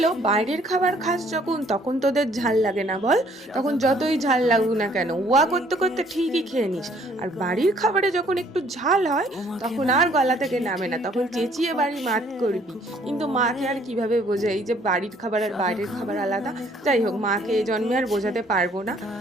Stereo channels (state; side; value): normal; both; correlation 0.61